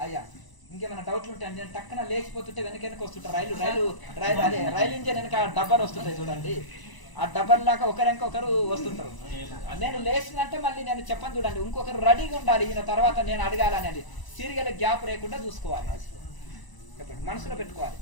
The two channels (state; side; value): late; right; 1.0 ms